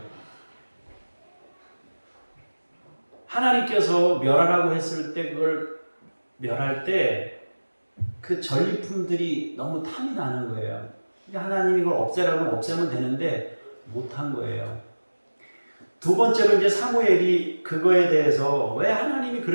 하나님께서 멸하라고 했을 때 그걸 멸할 때 그 전리품들이 너무 탐이 나는 거예요. 하나님이 이걸 없애라고 없애면 되는데 못한 거예요. 두 번째로 이제 사무엘이 그거에 대해서 왜 하나님이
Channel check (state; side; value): inverted; both; correlation -1.00